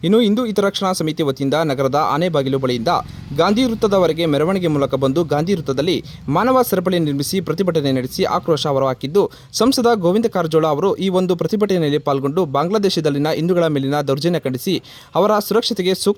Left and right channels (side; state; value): both; identical; correlation 1.00